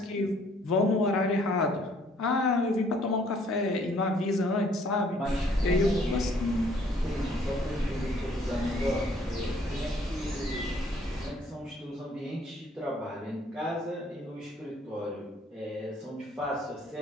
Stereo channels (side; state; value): both; normal; correlation 0.61